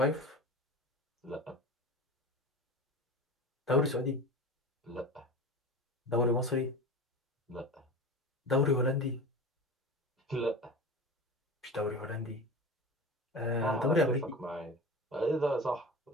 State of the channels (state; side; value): normal; both; correlation 0.32